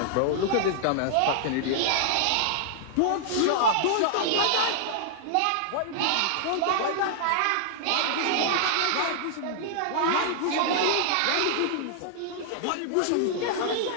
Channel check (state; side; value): different; both; correlation -0.01